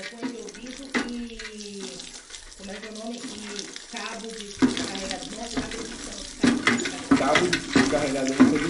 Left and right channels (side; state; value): both; identical; correlation 1.00